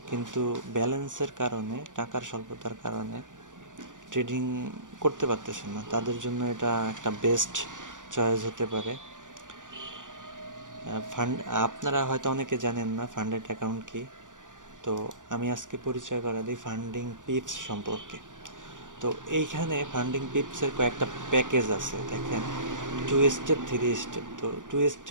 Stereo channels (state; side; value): late; left; 0.87 ms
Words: কিন্তু ব্যালেন্সের কারণে, টাকার স্বল্পতার কারণে ট্রেডিং করতে পারতেছেন না, তাদের জন্য এটা একটা বেস্ট চয়েস হতে পারে। ফান্ড আপনারা হয়তো অনেকে জানেন না ফান্ডেড অ্যাকাউন্ট কি। তো আমি আজকে পরিচয় করা দিই ফান্ডিং পিপস সম্পর্কে। তো এইখানে ফান্ডিং পিপসের কয়েকটা প্যাকেজ আছে দেখেন। 2 স্টেপ, 3 স্টেপ। তো 2